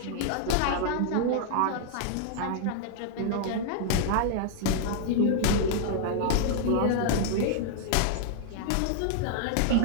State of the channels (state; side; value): different; both; correlation 0.00